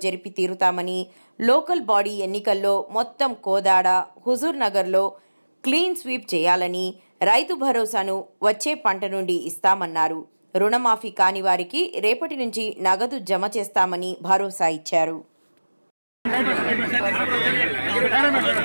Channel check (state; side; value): inverted; both; correlation -1.00